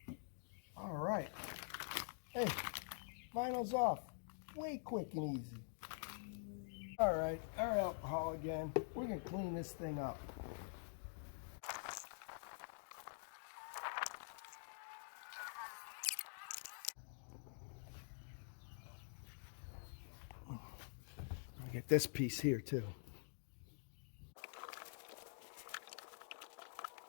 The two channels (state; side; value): silent; right; digital silence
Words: All right. Hey, vinyl's off. Way quick and easy. All right, our alcohol again. We're gonna clean this thing up. I get this piece here too.